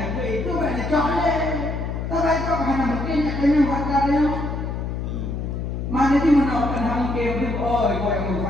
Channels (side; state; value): left; noise; hum, 4 dB below the sound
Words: itu banyak coklat. Tapi cok hanya mungkin kena wajar dia. Mana di mana orang hangkem tu? Oh, kau yang